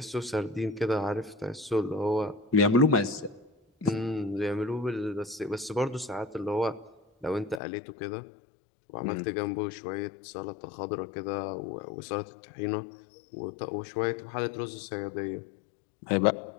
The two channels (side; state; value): right; drops out; at 7.6 s